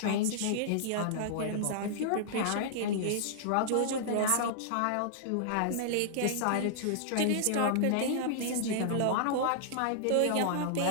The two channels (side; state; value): both; different; correlation -0.01